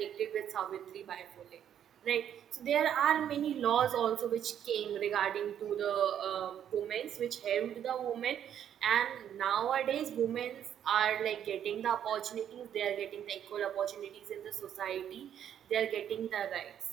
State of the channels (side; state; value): left; quieter; 9.7 dB